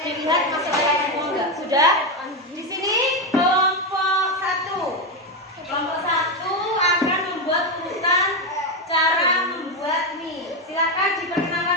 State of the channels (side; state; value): both; normal; correlation 0.09